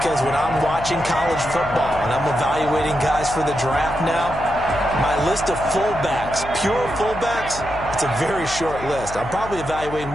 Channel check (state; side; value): noise; left; hum, 12 dB below the sound